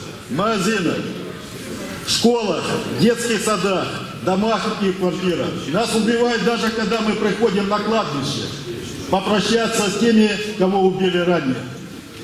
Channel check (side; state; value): both; identical; correlation 1.00